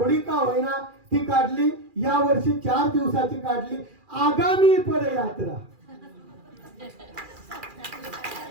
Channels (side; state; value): left; late; 2.4 ms